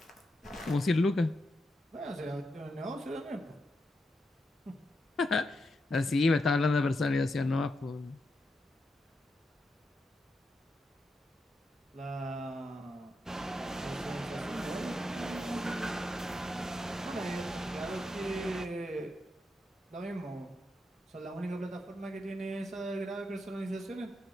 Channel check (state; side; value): normal; both; correlation 0.85